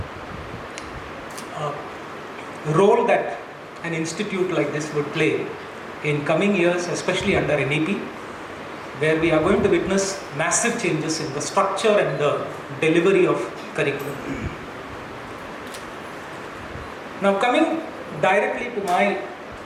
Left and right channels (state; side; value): identical; both; correlation 1.00